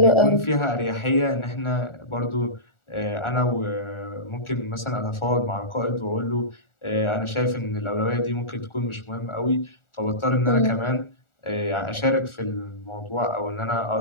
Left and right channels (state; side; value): late; right; 1.4 ms